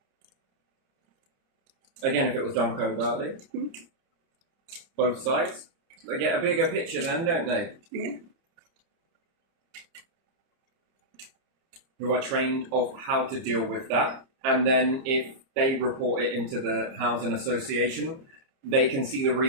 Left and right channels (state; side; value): late; left; 30 ms